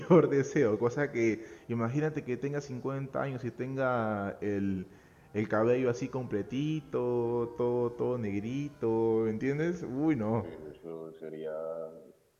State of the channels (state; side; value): identical; both; correlation 1.00